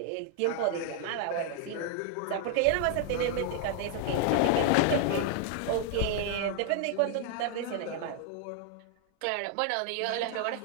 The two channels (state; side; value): different; both; correlation 0.00